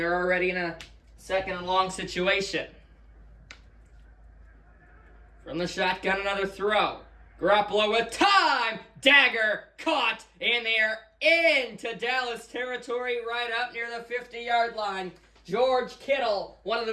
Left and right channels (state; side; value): identical; both; correlation 1.00